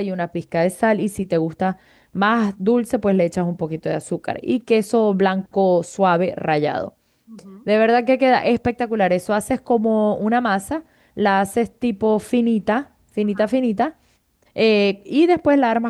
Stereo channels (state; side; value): identical; both; correlation 1.00